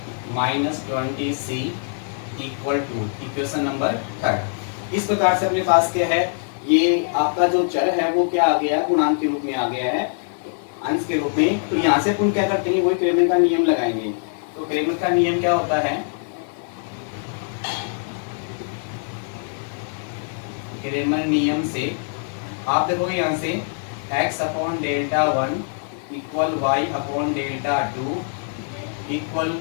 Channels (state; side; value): silent; right; digital silence